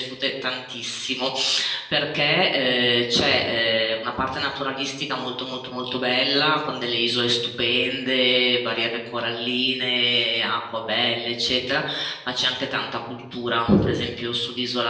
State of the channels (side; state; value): both; identical; correlation 1.00